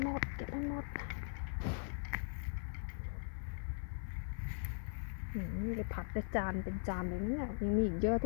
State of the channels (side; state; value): right; silent; 51 dB below the other